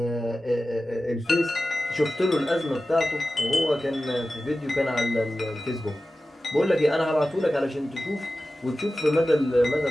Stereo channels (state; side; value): normal; both; correlation 0.95